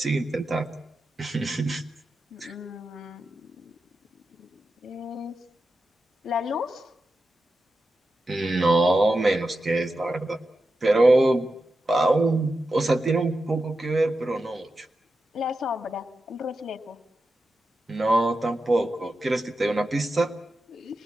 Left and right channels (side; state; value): both; normal; correlation 0.90